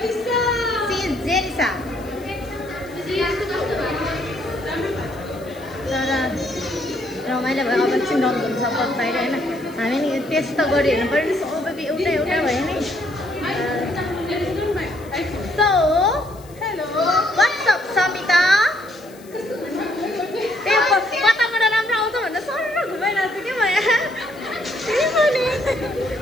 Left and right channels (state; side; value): noise; left; hiss, 24 dB below the sound